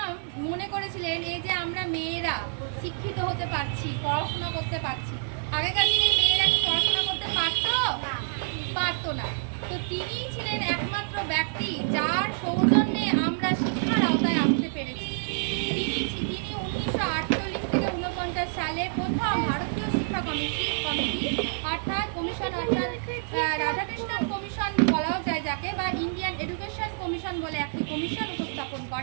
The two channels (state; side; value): silent; left; 60 dB below the other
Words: মনে করেছিলেন এই যে আমরা মেয়েরা শিক্ষিত হতে পারছি, পড়াশোনা করতে পারছি। আগেকার দিনে মেয়েরা কি পড়াশোনা করতে পারতো না। তো তিনিই ছিলেন একমাত্র ব্যক্তি যার সৌজন্যে আমরা শিক্ষার আওতায় আসতে পেরেছি। তিনি 1948 থেকে 49 সালে প্রথম ভারতীয় শিক্ষা কমিটি অর্থাৎ কমিশন, অর্থাৎ রাধাকৃষ্ণন কমিশন বলাও যায় যাকে, বা ইন্ডিয়ান এডুকেশন কমিশন বলে একটি কমিশন উপস্থাপন